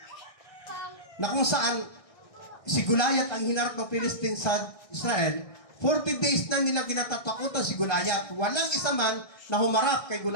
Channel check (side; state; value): right; late; 1.6 ms